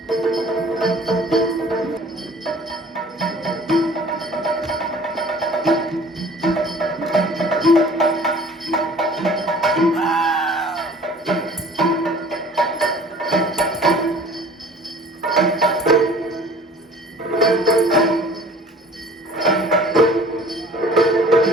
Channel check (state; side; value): normal; both; correlation 0.48